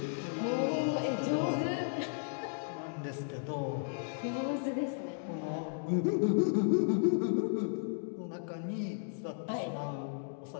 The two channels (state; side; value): silent; right; digital silence